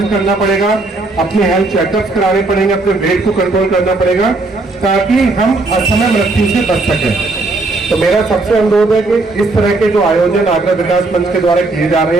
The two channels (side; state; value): left; quieter; 3.3 dB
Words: करना पड़ेगा, अपने हेल्थ चेकअप्स कराने पड़ेंगे, अपने वेट को कंट्रोल करना पड़ेगा ताकि हम असमय मृत्यु से बच सकें। तो मेरा सबसे अनुरोध है कि इस तरह के जो आयोजन आगरा विकास मंच के द्वारा किए जा